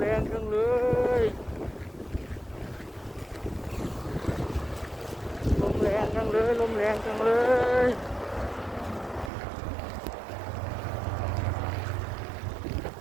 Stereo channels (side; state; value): left; drops out; at 9.3 s